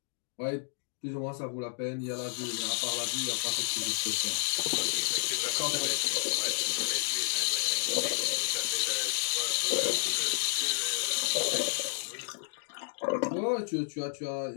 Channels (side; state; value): right; silent; digital silence